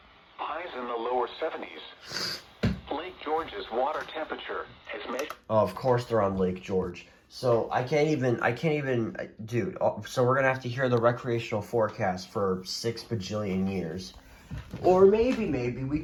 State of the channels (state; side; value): identical; both; correlation 1.00